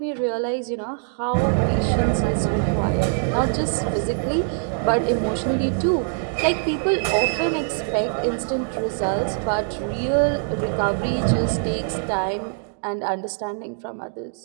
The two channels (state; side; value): silent; left; 63 dB below the other